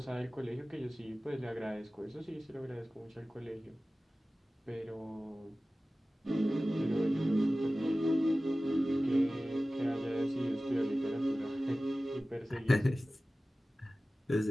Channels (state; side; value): normal; both; correlation 0.96